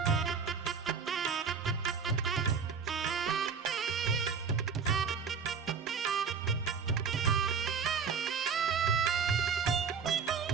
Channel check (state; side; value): quieter; left; 6.0 dB